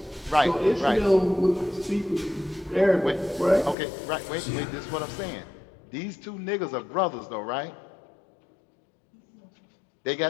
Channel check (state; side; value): drops out; right; at 3.8 s